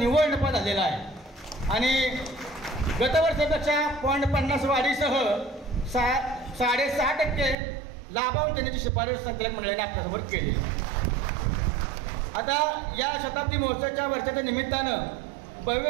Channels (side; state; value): left; drops out; at 7.6 s